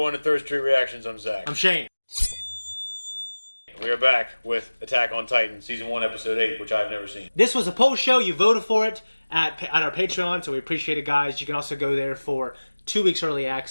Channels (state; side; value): inverted; both; correlation -1.00